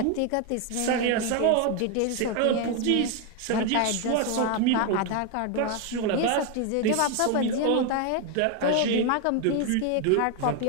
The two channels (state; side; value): different; both; correlation 0.01